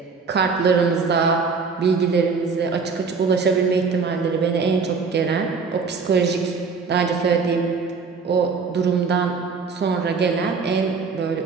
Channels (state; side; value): quieter; left; 5.0 dB